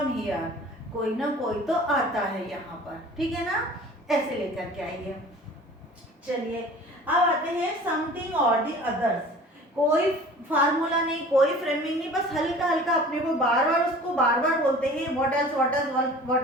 here, कोई ना कोई तो आता है यहाँ पर, ठीक है ना, ऐसे लेकर के आइए। चलिए अब आते हैं समथिंग और द अदर्स, कोई फार्मूला नहीं, कोई फ्रेमिंग नहीं, बस हल्का हल्का अपने को बार बार उसको बार बार बोलते हैं, what else what else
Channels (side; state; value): both; normal; correlation 0.44